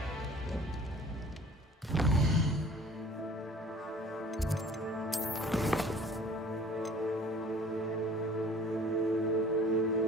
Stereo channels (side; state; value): both; normal; correlation 0.49